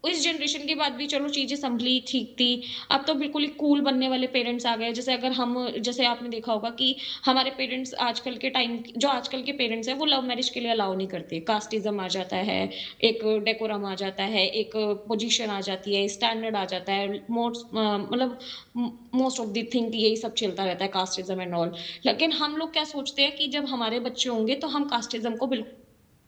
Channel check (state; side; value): identical; both; correlation 1.00